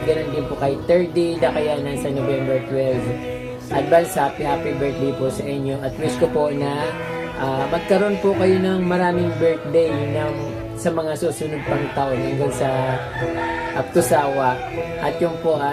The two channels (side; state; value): both; identical; correlation 1.00